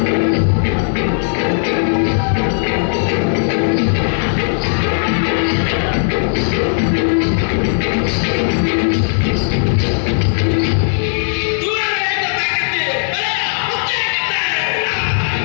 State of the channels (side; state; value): right; silent; digital silence